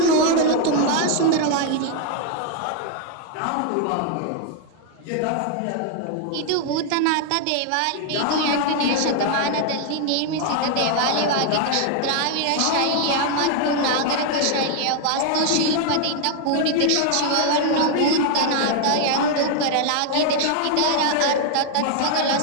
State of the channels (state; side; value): different; both; correlation 0.00